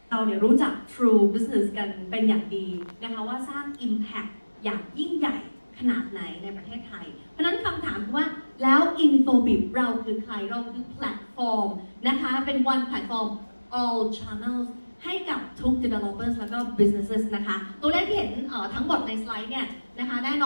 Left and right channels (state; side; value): inverted; both; correlation -1.00